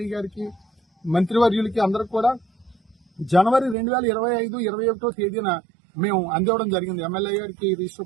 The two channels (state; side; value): drops out; left; at 3.8 s